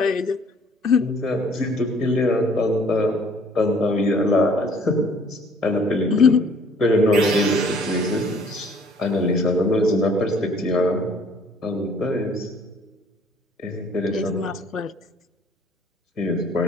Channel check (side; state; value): both; normal; correlation 0.57